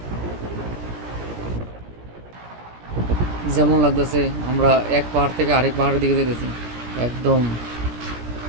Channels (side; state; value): left; late; 17 ms